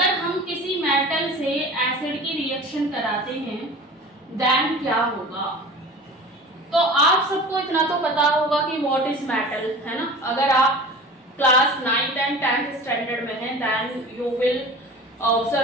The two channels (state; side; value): normal; both; correlation 0.38